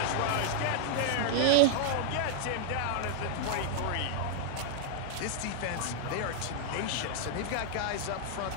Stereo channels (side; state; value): both; different; correlation 0.00